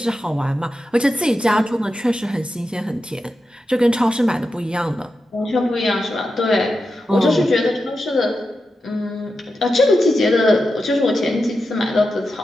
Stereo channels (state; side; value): normal; both; correlation 0.89